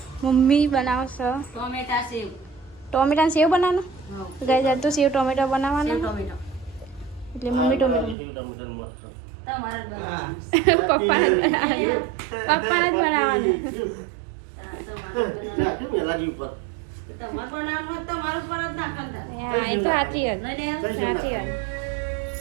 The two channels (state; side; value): drops out; left; at 8.2 s